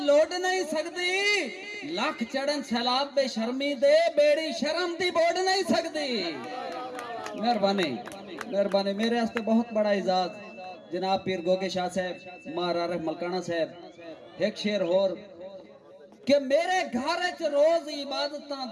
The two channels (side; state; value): both; identical; correlation 1.00